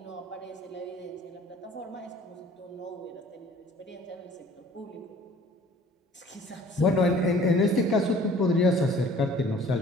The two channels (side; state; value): both; normal; correlation 0.51